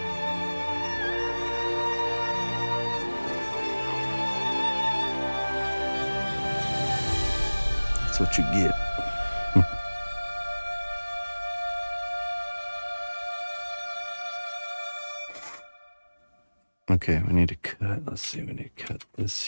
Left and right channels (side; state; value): both; inverted; correlation -1.00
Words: That's what you get. Okay, we need to cut. Let's see, we need to cut this